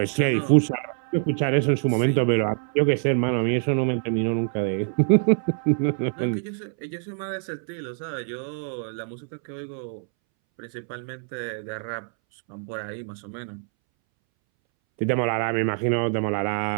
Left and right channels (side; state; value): left; silent; 62 dB below the other